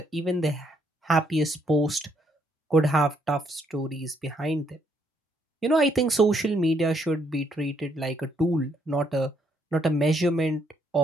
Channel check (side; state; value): both; normal; correlation 0.71